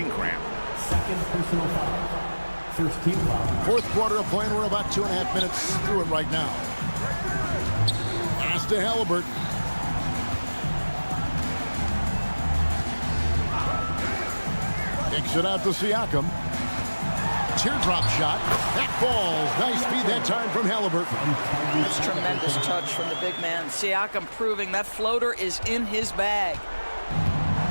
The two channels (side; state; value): both; inverted; correlation -1.00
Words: cramp. Second personal foul. First team foul. Fourth quarter of play, and we're about 2.5 minutes through it right now. Pass to Halliburton. Kicks it out to Siakam. teardrop shot. That falls. Nice speed that time from Halliburton. That's tremendous touch from the big man. Siakam proving that floater is in his bag.